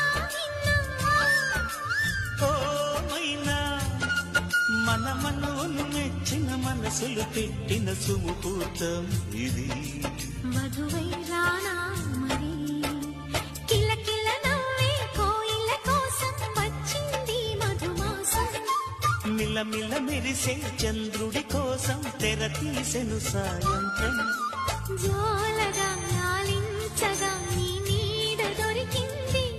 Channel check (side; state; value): both; identical; correlation 1.00